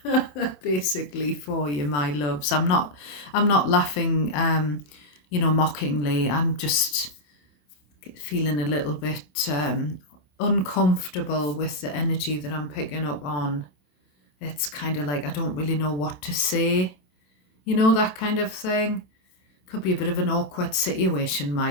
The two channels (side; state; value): right; late; 27 ms